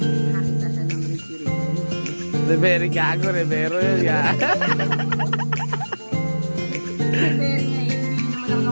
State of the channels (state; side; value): inverted; both; correlation -1.00